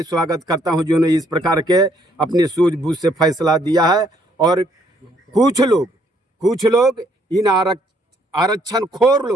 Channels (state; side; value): normal; both; correlation 0.67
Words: स्वागत करता हूं जिन्होंने इस प्रकार के अपनी सूझबूझ से फैसला दिया है। और कुछ लोग इन आरक्षण खोर